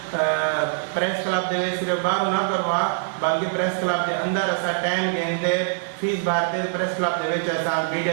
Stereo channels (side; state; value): left; silent; digital silence